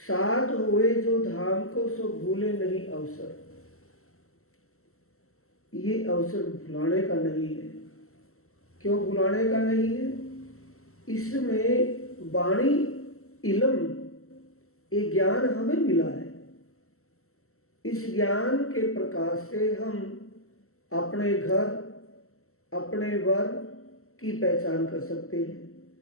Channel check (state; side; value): late; right; 0.63 ms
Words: साथ हुए जो धाम को सो भूले नहीं अवसर। ये अवसर भुलाने का नहीं है। क्यों भुलाने का नहीं है? इसमें वाणी इल्म, ये ज्ञान हमें मिला है। इस ज्ञान के प्रकाश से हम अपने घर, अपने वर की पहचान कर सकते हैं,